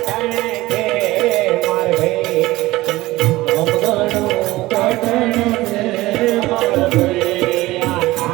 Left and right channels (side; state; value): left; quieter; 18.5 dB